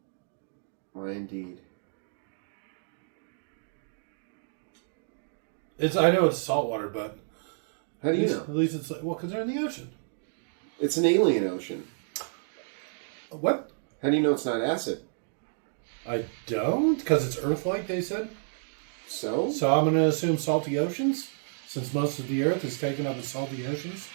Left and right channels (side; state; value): left; silent; digital silence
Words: Why indeed. I know it's salt water, but How do you know? at least it's like, well, because they're in the ocean. It's an alien ocean. What? How do you know it's not acid? I don't, because it's Earth-like. They said. So? So I'm going to assume salty oceans, since most of the Earth is taken up in salty oceans.